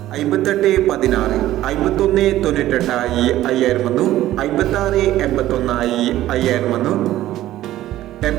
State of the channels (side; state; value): left; quieter; 14.3 dB